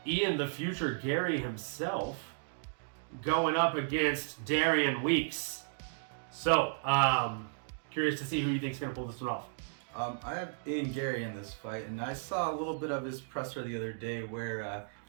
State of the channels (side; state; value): left; silent; digital silence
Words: Ian the Future Gary himself going up against Darian Weeks. So, curious to see who you think is going to pull this one off. I have Ian Gary in this fight, and I saw a little bit of his presser the other day where